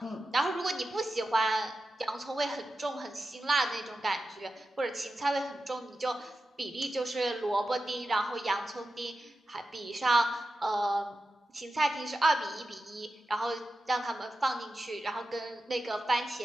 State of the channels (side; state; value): both; normal; correlation 0.91